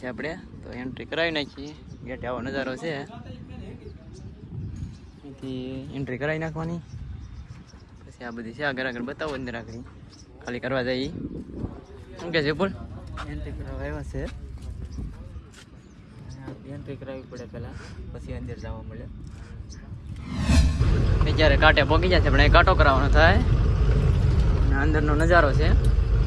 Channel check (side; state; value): both; identical; correlation 1.00